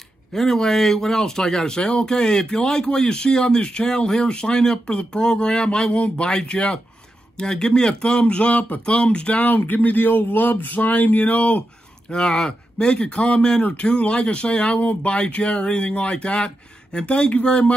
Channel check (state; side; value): normal; both; correlation 0.88